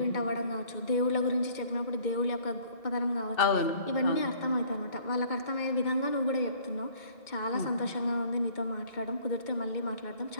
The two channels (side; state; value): right; late; 2.2 ms